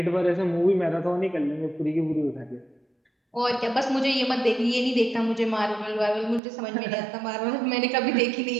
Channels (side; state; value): left; drops out; at 6.4 s